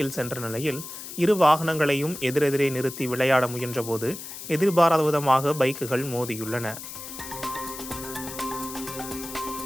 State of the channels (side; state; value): left; noise; hiss, 11 dB below the sound